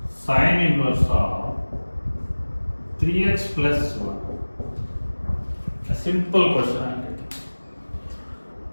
sine inverse of 3x plus 1. A simple question I'm taking.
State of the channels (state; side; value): inverted; both; correlation -1.00